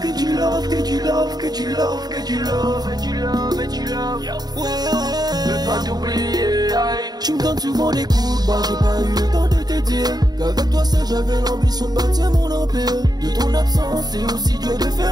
du love, que du love, que du love, que du love, et du love, et du love. Ouais, veux pas t'oublier. Tu me donnes souvent des coups de barre, j'ai pas eu le temps de te dire qu'avec toi seul j'avais l'ambition de bâtir mon empire. De ton absence c'est aussi dur de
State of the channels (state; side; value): late; left; 0.19 ms